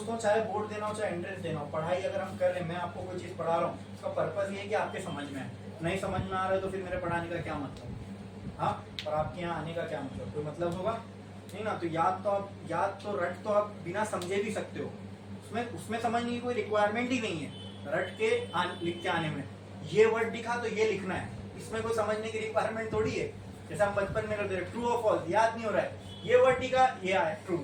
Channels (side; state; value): both; identical; correlation 1.00